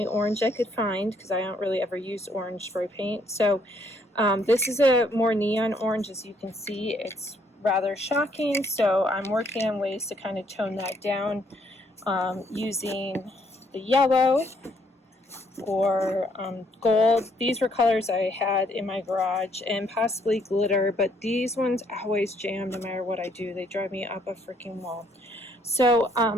orange I could find because I don't really ever use orange spray paint. So this is a more neon orange. As you can see, it's rather shocking. So I'm working on ways to kind of tone that down using the yellow or gold. These were colors I had in my garage, and possibly glitter, but these ones always jam no matter what I do. They drive me up a freaking wall. So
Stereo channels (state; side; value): normal; both; correlation 0.68